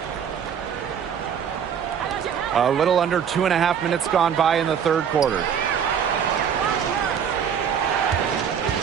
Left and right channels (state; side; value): quieter; left; 7.8 dB